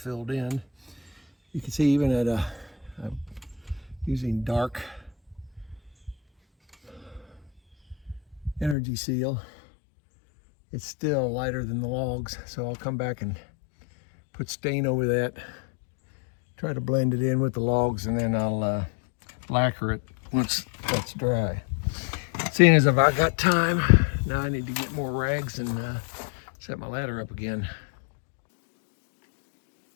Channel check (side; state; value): right; drops out; at 8.8 s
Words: in. You can see even at I'm using dark energy seal, it's still lighter than the logs, so I'll come back and put stain over that, try to blend it in with the logs, and then I'll lacquer it once that's dry. Seeing as if I got time, now I need to get more rags and set my ladder up again.